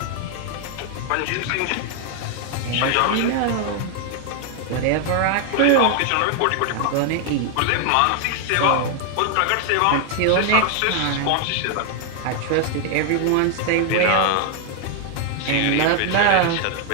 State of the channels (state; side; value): different; both; correlation 0.00